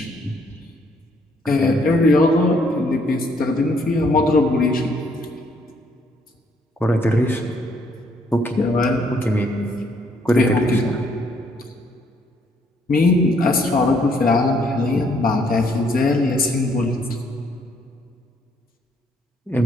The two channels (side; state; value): both; normal; correlation 0.68